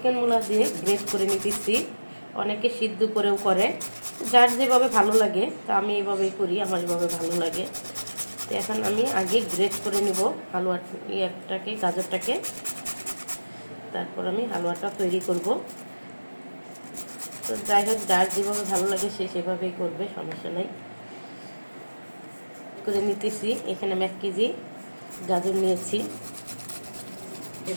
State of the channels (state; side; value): inverted; both; correlation -1.00